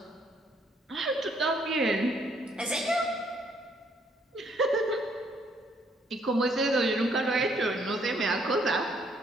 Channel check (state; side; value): normal; both; correlation 0.67